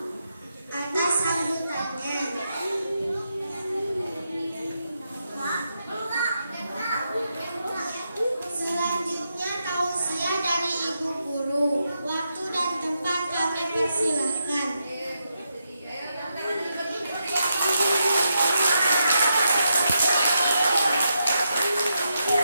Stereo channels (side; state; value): both; inverted; correlation -0.83